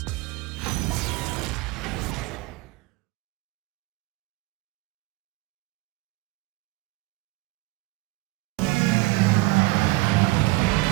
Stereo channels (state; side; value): quieter; left; 22.1 dB